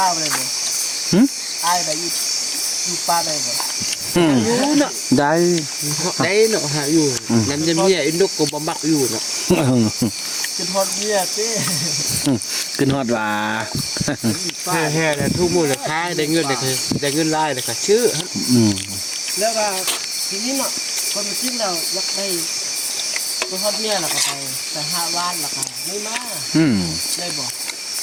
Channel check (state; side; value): identical; both; correlation 1.00